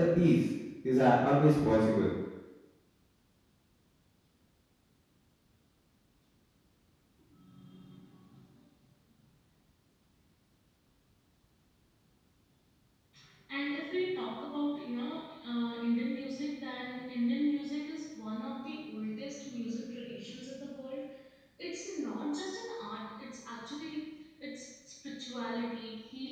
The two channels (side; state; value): both; identical; correlation 1.00